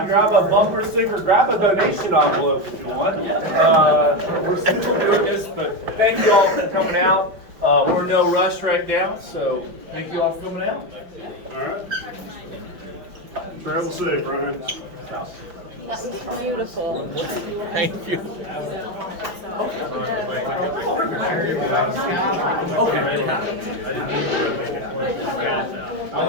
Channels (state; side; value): late; left; 5.4 ms